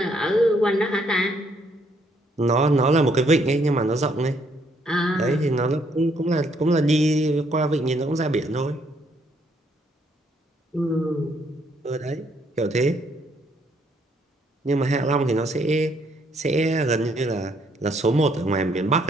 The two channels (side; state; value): both; normal; correlation 0.69